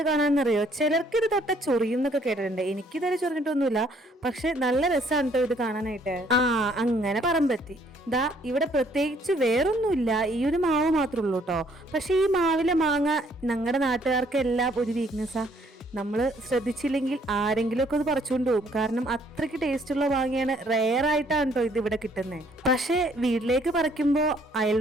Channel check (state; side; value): normal; both; correlation 0.64